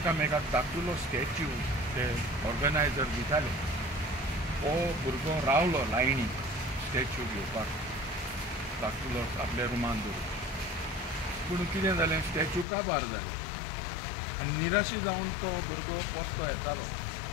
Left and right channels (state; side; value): drops out; right; at 12.7 s